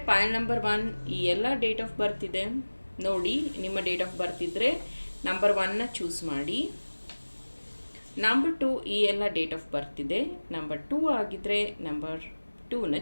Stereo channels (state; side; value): inverted; both; correlation -1.00